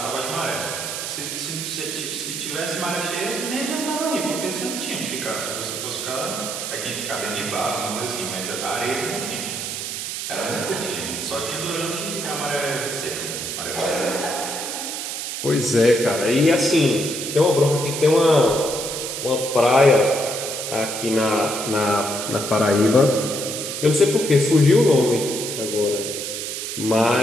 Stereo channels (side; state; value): right; noise; hiss, 5 dB below the sound